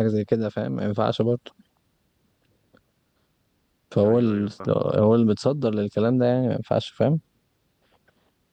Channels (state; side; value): identical; both; correlation 1.00